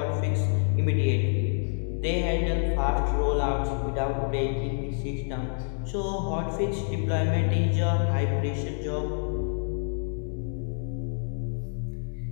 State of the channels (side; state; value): right; silent; digital silence